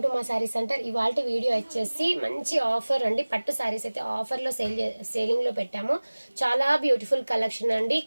to మా sari centre. ఇవాళ వీడియో వచ్చేసి మంచి ఆఫర్ అండి. పట్టు శారీస్ అయితే ఆఫర్లో సేలింగ్లో పెట్టాము. చాలా బ్యూటిఫుల్ కలెక్షన్ అండి.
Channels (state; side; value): inverted; both; correlation -1.00